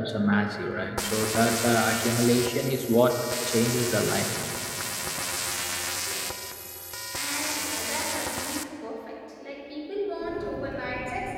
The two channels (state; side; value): identical; both; correlation 1.00